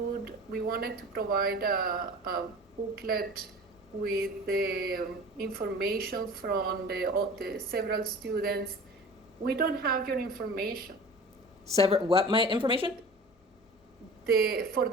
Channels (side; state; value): both; normal; correlation 0.39